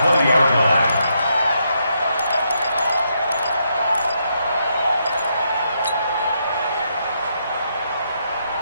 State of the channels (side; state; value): both; inverted; correlation -0.78